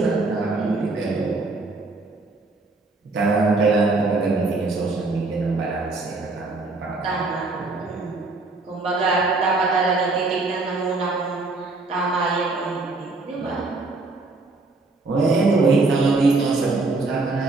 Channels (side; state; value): left; quieter; 3.4 dB